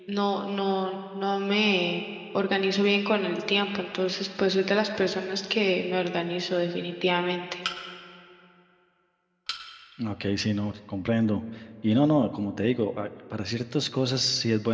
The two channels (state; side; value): identical; both; correlation 1.00